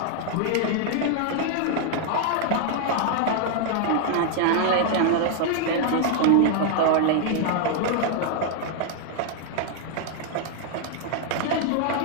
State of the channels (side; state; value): both; different; correlation 0.00